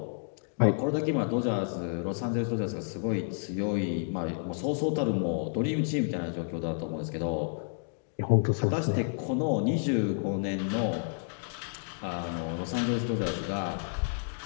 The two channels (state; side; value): silent; right; digital silence